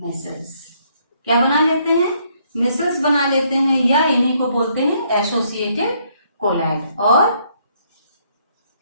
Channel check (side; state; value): both; inverted; correlation -0.69